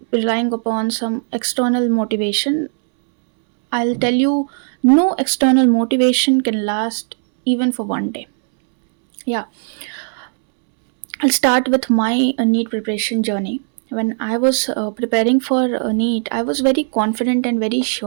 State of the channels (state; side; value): silent; left; 68 dB below the other